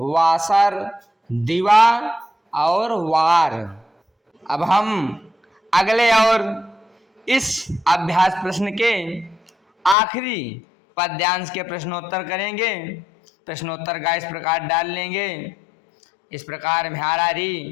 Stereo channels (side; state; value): right; drops out; at 10.0 s